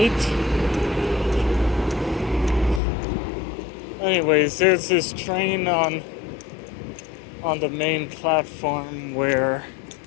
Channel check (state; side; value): drops out; right; at 2.8 s